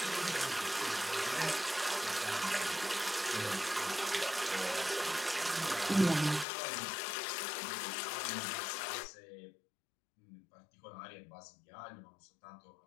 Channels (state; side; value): drops out; right; at 6.5 s